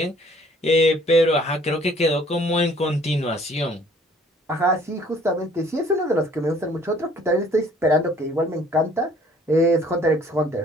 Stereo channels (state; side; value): normal; both; correlation 0.57